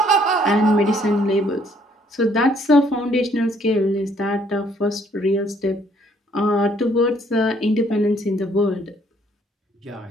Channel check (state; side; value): normal; both; correlation 0.64